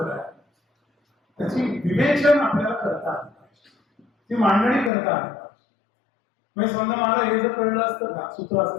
आहे. त्याची विवेचन आपल्याला करता आलं पाहिजे, ती मांडणी करता आली पाहिजे. म्हणजे समजा मला हे जर कळलं असतं का सूत्र असं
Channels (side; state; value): right; drops out; at 4.9 s